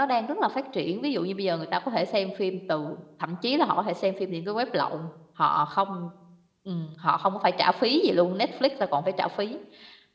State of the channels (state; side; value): identical; both; correlation 1.00